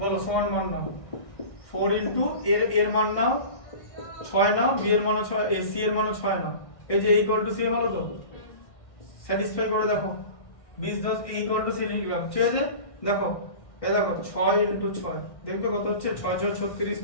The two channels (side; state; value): right; late; 1.6 ms